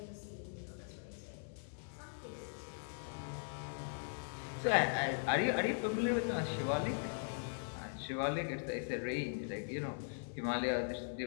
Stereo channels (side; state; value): right; silent; digital silence